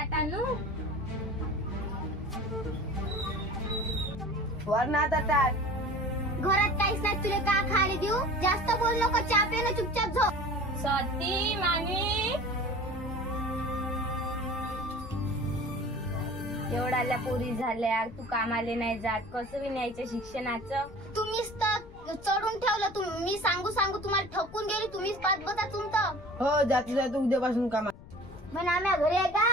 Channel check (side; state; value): left; noise; rumble, 18 dB below the sound